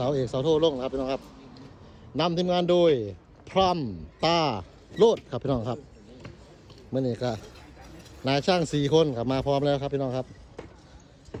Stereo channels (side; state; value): both; identical; correlation 1.00